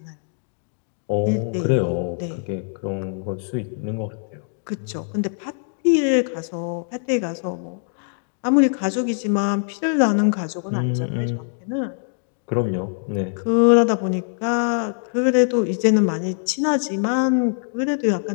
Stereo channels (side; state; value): right; silent; digital silence